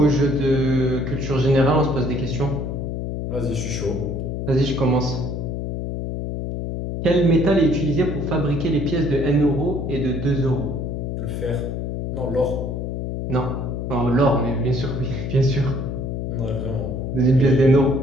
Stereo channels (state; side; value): noise; left; hum, 4 dB below the sound